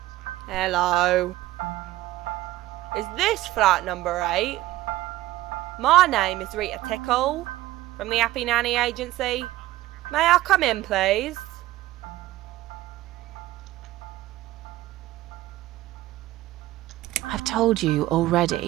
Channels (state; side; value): quieter; left; 16.2 dB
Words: Hello. Is this flat number 8? My name is Rita Tickle, from the Happy Nanny Agency. May I come in, please? I've told you